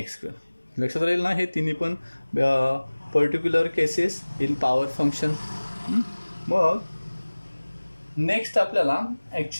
लक्षात राहील ना, हे तिन्ही पण particular cases in power function. मग नेक्स्ट आपल्याला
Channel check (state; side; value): inverted; both; correlation -1.00